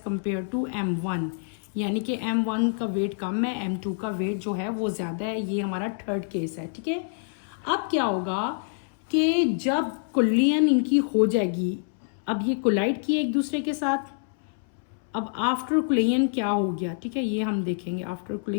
टू M1, यानी कि M1 का वेट कम है, M2 का वेट जो है वो ज़्यादा है। ये हमारा थर्ड केस है, ठीक है। अब क्या होगा कि जब कोलिजन इनकी हो जाएगी, अब ये कोलाइड किए एक दूसरे के साथ, अब आफ्टर कोलिजन क्या हो गया, ठीक है, ये हम देखेंगे आफ्टर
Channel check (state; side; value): silent; right; 60 dB below the other